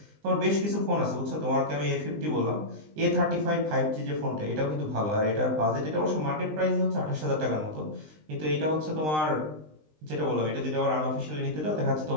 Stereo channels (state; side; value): late; left; 20 ms